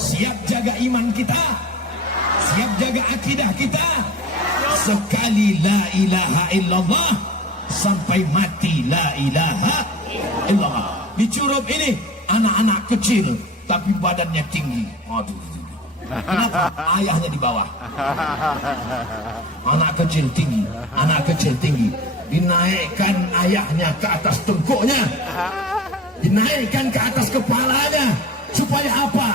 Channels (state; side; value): normal; both; correlation 0.36